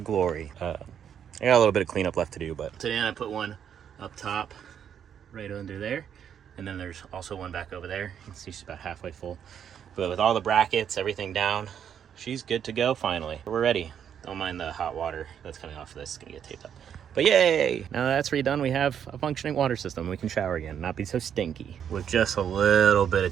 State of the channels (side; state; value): left; quieter; 8.6 dB